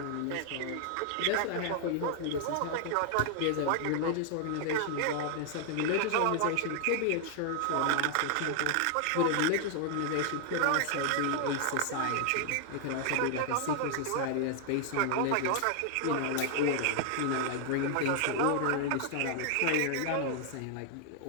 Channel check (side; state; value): both; different; correlation 0.00